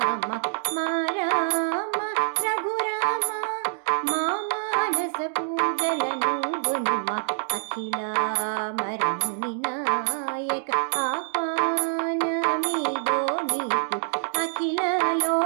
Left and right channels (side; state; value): left; silent; digital silence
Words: మా రామ రఘురామ మా మానస పూజలను గునుమ అఖిలామరముని నాయక ఆహ్వానమిదో నీకు అఖిల